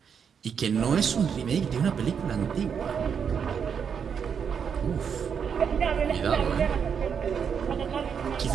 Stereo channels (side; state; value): left; quieter; 7.1 dB